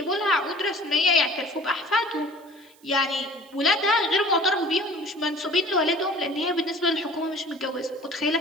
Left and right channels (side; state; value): right; noise; hiss, 29 dB below the sound